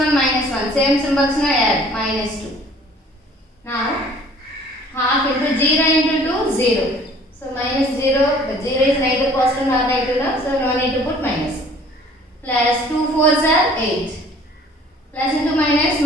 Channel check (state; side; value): normal; both; correlation 0.53